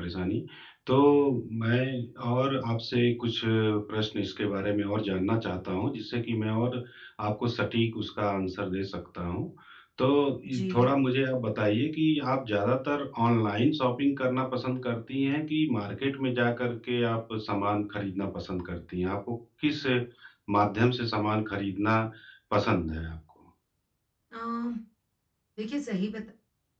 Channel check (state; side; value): identical; both; correlation 1.00